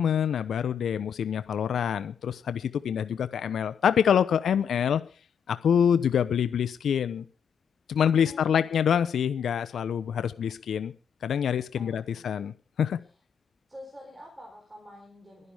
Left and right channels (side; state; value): right; quieter; 7.8 dB